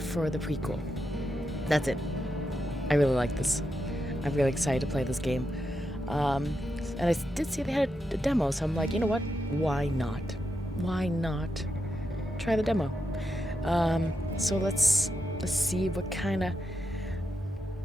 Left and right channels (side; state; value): both; normal; correlation 0.85